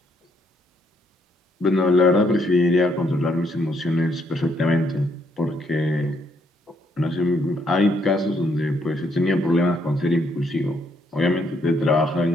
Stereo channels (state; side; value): normal; both; correlation 0.72